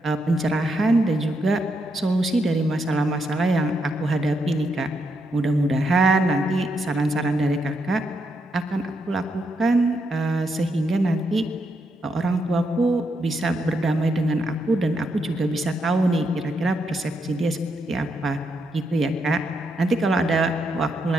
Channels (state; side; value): normal; both; correlation 0.80